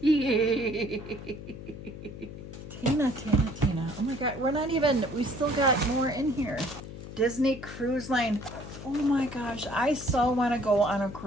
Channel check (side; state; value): left; noise; hum, 12 dB below the sound